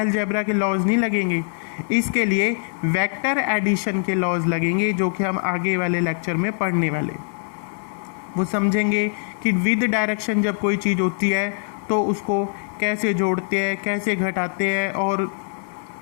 के लॉज नहीं लगेंगे, इसके लिए वेक्टर एडिशन के लॉज लगेंगे, जो कि हम आगे वाले लेक्चर में पढ़ने वाले। वो समझेंगे कि विद डायरेक्शन जब कोई चीज़ होती है तो उसको कैसे जोड़ते हैं, कैसे घटाते हैं और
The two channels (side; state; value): right; silent; 64 dB below the other